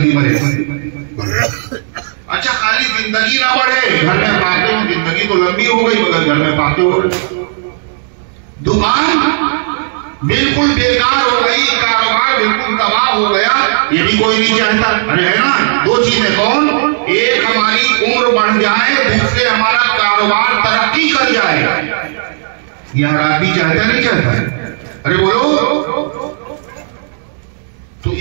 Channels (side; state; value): left; silent; digital silence